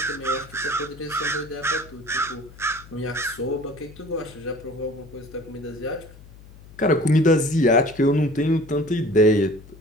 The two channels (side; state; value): left; noise; hum, 20 dB below the sound